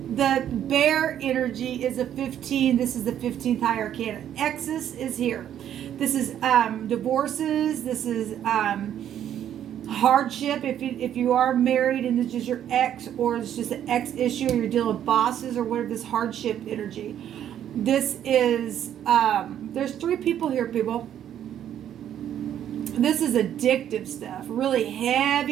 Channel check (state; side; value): quieter; left; 10.3 dB